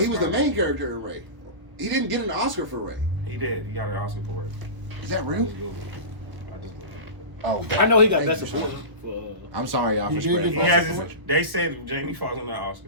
he was the main character in Ray. He didn't get an Oscar for Ray. He did. He got an Oscar for Ray. Is that I real? just Googled it. I just Googled it. Oh, I know he got thank best you, support son. for. I'm sorry, y'all, He for did spreading. He get has Best his, they said Jamie Foxx on that Oscar.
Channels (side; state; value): left; late; 1.1 ms